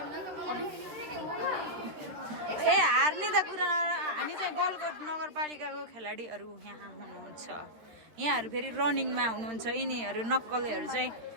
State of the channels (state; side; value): late; left; 13 ms